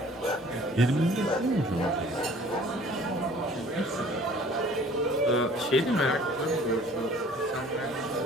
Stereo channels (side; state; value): both; normal; correlation 0.51